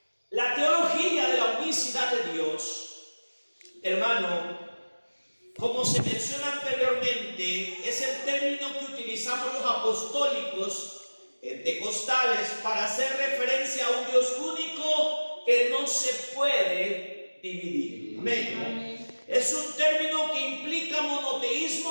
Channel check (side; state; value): both; inverted; correlation -1.00